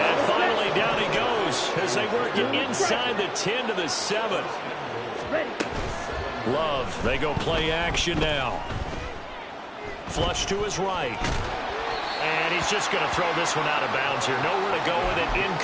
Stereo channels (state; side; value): identical; both; correlation 1.00